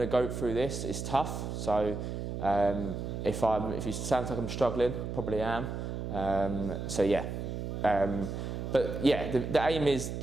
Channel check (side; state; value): right; noise; hum, 5 dB below the sound